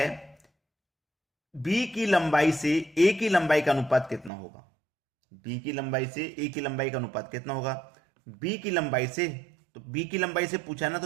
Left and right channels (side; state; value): left; drops out; at 4.3 s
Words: बी की लंबाई से ए की लंबाई का अनुपात कितना होगा। बी की लंबाई से ए की लंबाई का अनुपात कितना होगा। बी की लंबाई से, तो बी की लंबाई से पूछा ना,